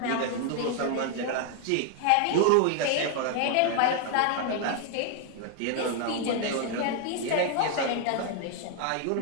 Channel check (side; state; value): both; different; correlation 0.00